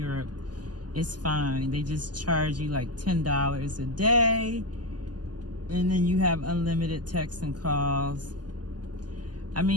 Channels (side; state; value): left; late; 0.70 ms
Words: is fine. They just charge you like $10 a day. And then you have unlimited texts and calls. I